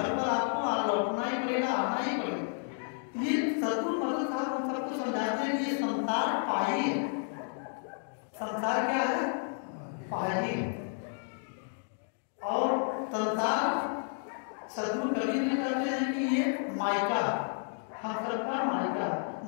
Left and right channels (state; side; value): silent; right; 55 dB below the other